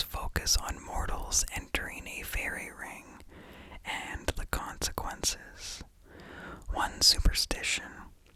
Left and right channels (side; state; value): both; identical; correlation 1.00